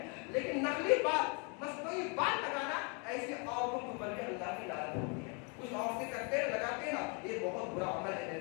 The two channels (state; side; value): quieter; right; 35.3 dB